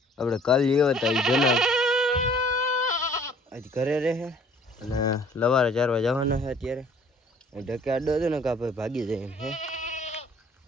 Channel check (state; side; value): normal; both; correlation 0.55